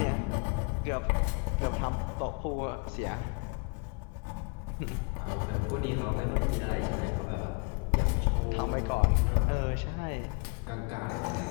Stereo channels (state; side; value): quieter; right; 33.9 dB